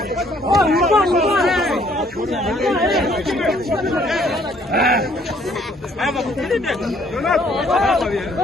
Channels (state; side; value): normal; both; correlation 0.63